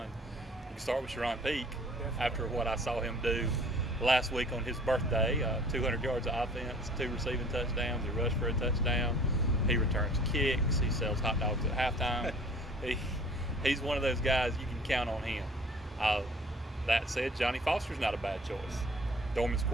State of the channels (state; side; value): normal; both; correlation 0.50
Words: You can start with Sharon Peak. Definitely. After what I saw him do last week on his birthday. 200 yards of offense, 2 receiving touchdowns. He rushed for a touchdown. He returns kicks. He sells hot dogs at halftime. He's one of those guys you can count on him. That said, Johnny Foster's not a bad choice. Dorman's